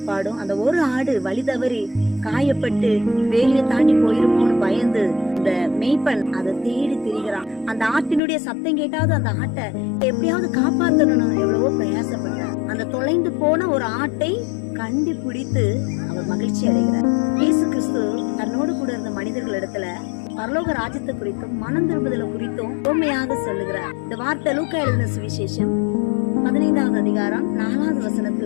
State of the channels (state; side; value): drops out; right; at 8.2 s